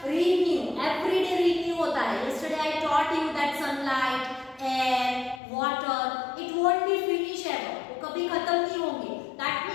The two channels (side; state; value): right; drops out; at 5.4 s